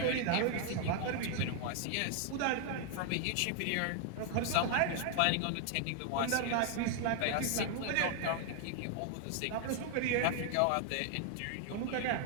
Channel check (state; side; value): different; both; correlation 0.00